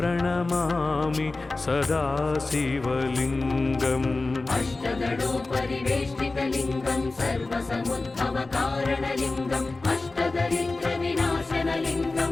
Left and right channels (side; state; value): right; quieter; 3.4 dB